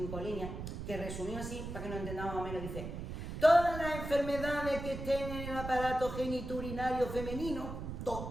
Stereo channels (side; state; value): right; noise; rumble, 7 dB below the sound